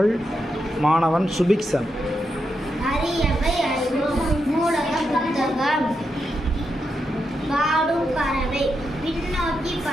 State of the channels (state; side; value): normal; both; correlation 0.84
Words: மாணவன் சுபிக்சன். அரியவை அறிவோம். நூலக புத்தகம். பாடும் பறவை. பின்னோக்கி